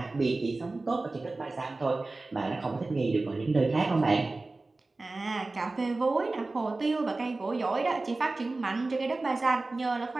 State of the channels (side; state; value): left; quieter; 3.3 dB